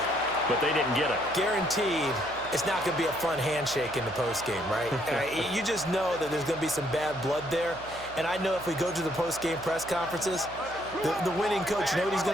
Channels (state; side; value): noise; right; hum, 19 dB below the sound